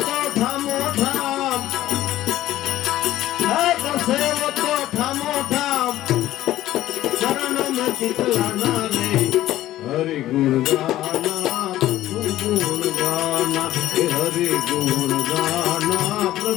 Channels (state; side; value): quieter; right; 14.4 dB